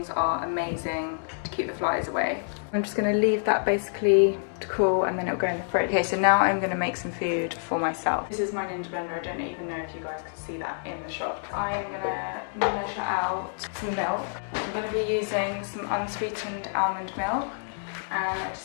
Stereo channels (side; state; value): right; silent; digital silence